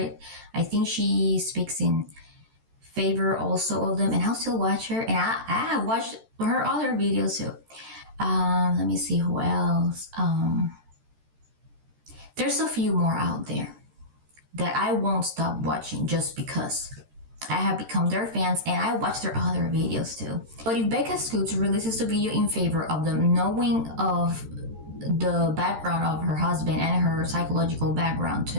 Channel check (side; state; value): left; late; 13 ms